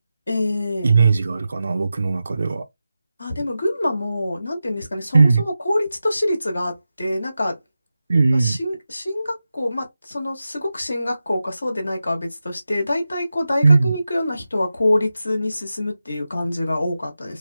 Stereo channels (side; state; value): both; inverted; correlation -0.92